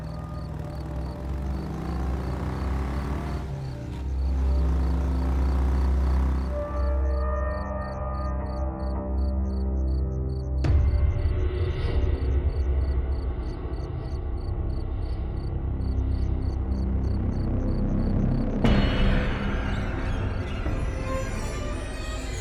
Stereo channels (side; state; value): both; identical; correlation 1.00